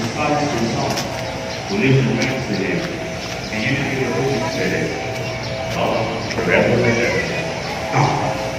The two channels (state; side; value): identical; both; correlation 1.00